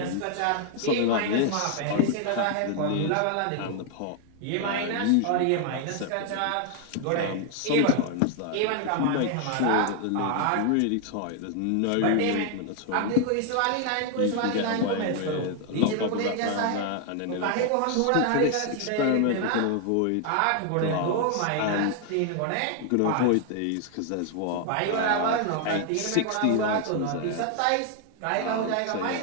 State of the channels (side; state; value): both; different; correlation 0.00